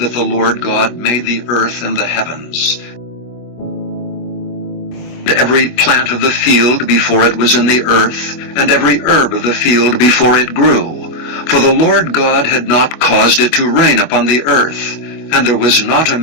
the Lord God made the earth and the heavens. Every plant of the field before it was in the earth, and every herb of the field before it grew. For the Lord God had not caused it to rain upon the earth, and there was not a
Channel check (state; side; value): late; right; 24 ms